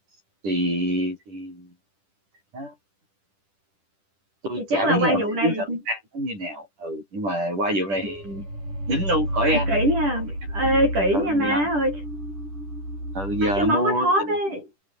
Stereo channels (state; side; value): late; left; 10 ms